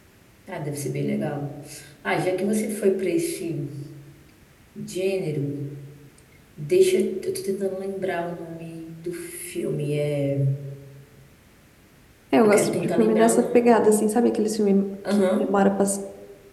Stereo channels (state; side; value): identical; both; correlation 1.00